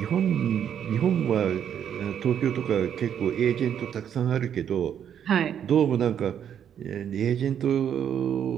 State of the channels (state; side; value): quieter; left; 9.0 dB